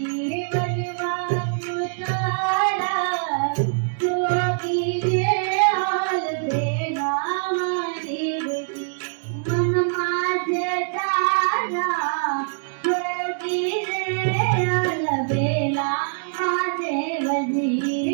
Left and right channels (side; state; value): left; silent; digital silence